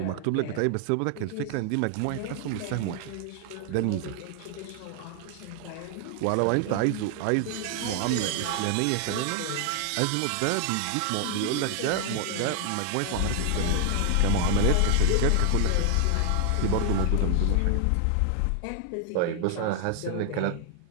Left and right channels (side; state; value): both; different; correlation 0.00